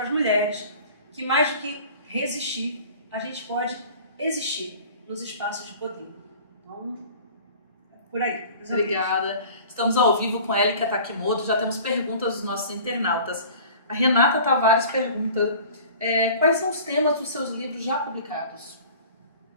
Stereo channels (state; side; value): inverted; both; correlation -0.44